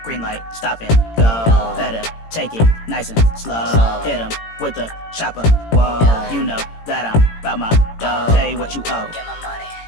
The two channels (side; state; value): right; late; 18 ms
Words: green light, stop and go. Better take it nice and slow. Hit 'em with the chopper. Whoa, you know that I'm about my dough. Pay what you owe. Get my money.